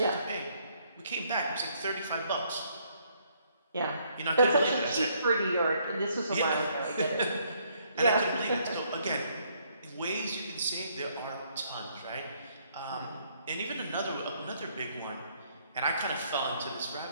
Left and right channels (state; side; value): inverted; both; correlation -0.68